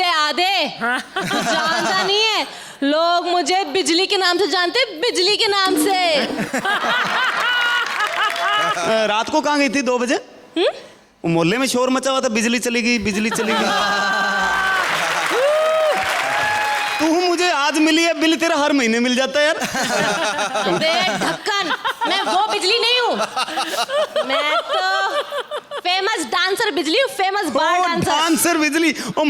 आधे। जानता नहीं है, लोग मुझे बिजली के नाम से जानते, बिजली के नाम से। रात को कहाँ गई थी 2 बजे? मोहल्ले में शोर मचा हुआ था, बिजली चली गई, बिजली चली गई। तू मुझे आज मिली है, बिल तेरा हर महीने मिल जाता है यार। अबे ढक्कन, मैं वो बिजली नहीं हूँ, मैं तो फेमस डांसर बिजली हूँ, फेमस बार डांसर। डांसर बिजली, और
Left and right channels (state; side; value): identical; both; correlation 1.00